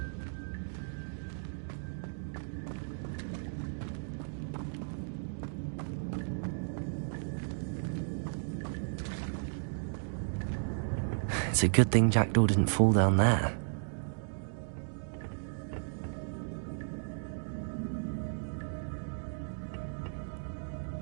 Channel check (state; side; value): silent; left; digital silence